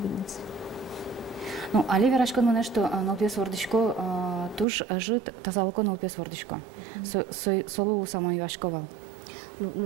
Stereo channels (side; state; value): left; drops out; at 4.7 s